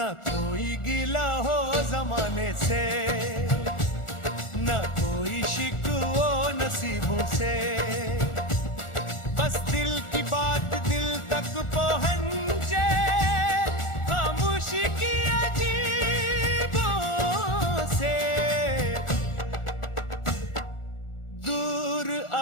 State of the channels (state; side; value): late; right; 1.4 ms